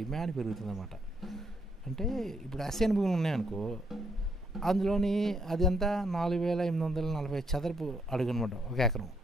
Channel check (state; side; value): normal; both; correlation 0.73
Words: పెరుగుతుందన్నమాట. అంటే ఇప్పుడు అసైన్ భూములు ఉన్నాయనుకో, అందులోని అది అంతా 4,840 చదరపు అడుగు అనమాట ఒక ఎకరం.